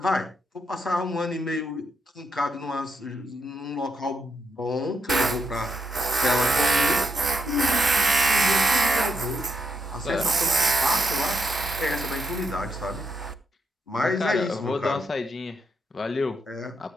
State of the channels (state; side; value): normal; both; correlation 0.80